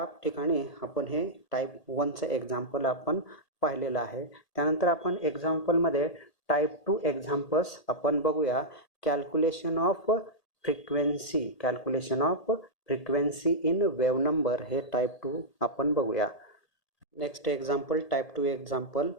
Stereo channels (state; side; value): late; right; 1.8 ms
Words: ठिकाणी आपण हे टाईप 1चं एक्झाम्पल आपण पाहिलेलं आहे. त्यानंतर आपण एक्झाम्पलमध्ये टाईप 2 एक्झाम्पल्स आपण बघूया. Calculation of frequency in wave number हे टाईप 2 आपण बघूया. Next example type 2 example